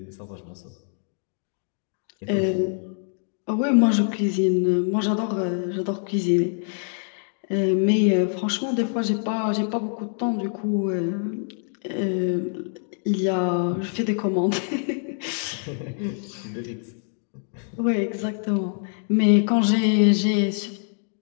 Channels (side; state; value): right; silent; 58 dB below the other